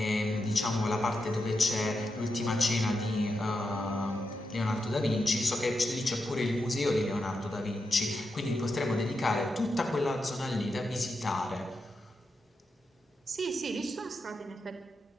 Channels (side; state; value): both; normal; correlation 0.86